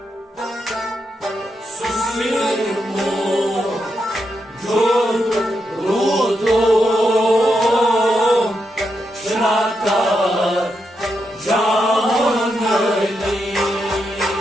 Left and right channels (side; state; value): both; normal; correlation 0.84